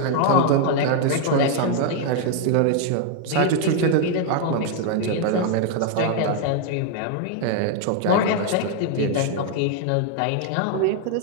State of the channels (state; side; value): different; both; correlation 0.00